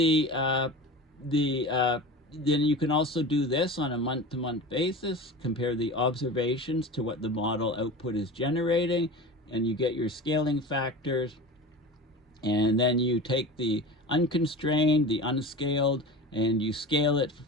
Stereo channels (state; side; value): normal; both; correlation 0.32